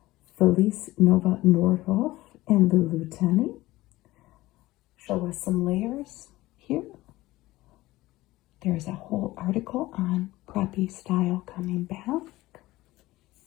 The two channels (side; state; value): right; quieter; 18.0 dB